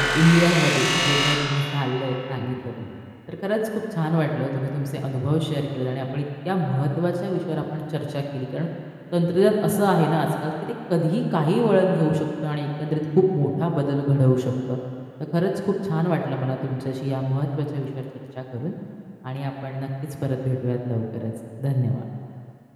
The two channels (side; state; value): both; identical; correlation 1.00